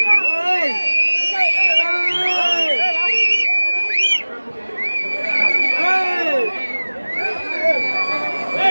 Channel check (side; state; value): both; inverted; correlation -1.00